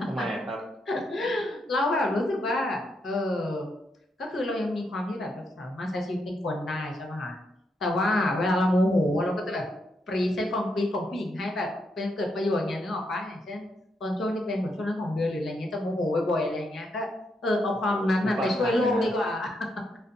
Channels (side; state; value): both; normal; correlation 0.79